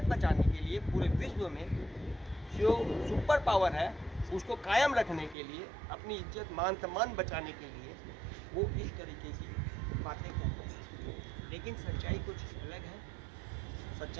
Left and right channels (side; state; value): left; drops out; at 5.4 s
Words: बचाने के लिए पूरे विश्व में जो सुपर पावर है उसको कायम रखने के लिए, अपनी इज्जत मान सम्मान बचाने के लिए वो इस तरीके की बातें करते हैं। लेकिन सच्चाई कुछ अलग है।